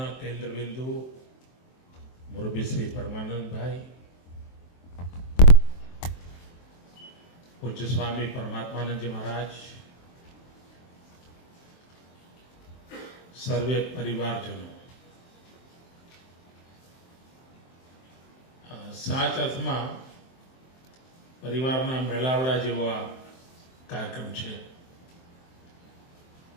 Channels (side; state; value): right; late; 23 ms